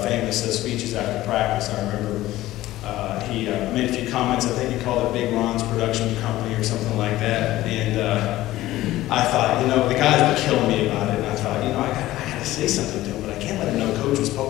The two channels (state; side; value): quieter; right; 15.9 dB